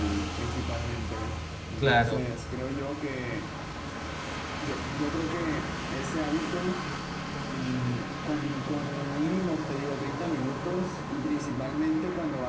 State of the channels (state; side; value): identical; both; correlation 1.00